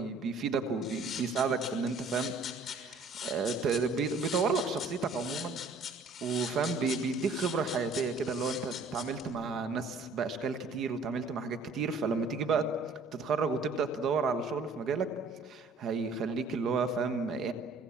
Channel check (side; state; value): left; quieter; 3.5 dB